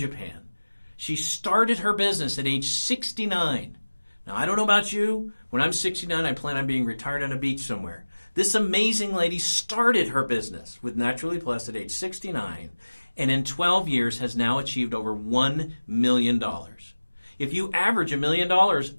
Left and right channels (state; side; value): inverted; both; correlation -1.00